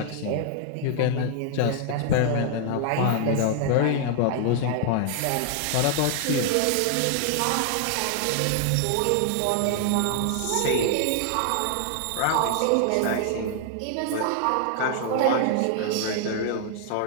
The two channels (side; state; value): both; different; correlation 0.00